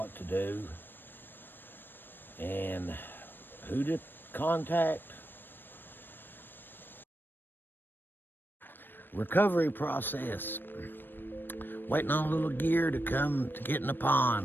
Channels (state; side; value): late; right; 0.095 ms